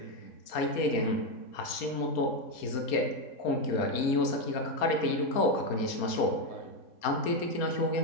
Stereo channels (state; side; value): late; right; 4.3 ms